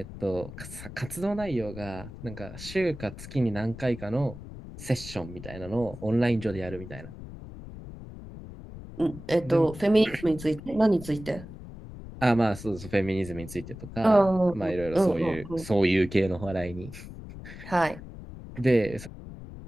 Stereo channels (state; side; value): noise; left; rumble, 13 dB below the sound